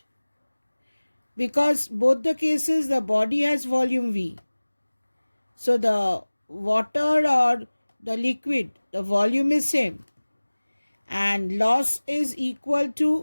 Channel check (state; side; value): inverted; both; correlation -1.00